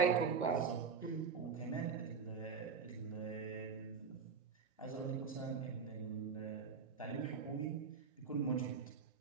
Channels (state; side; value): quieter; left; 5.7 dB